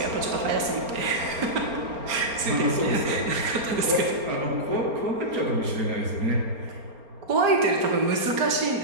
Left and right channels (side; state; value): left; late; 4.3 ms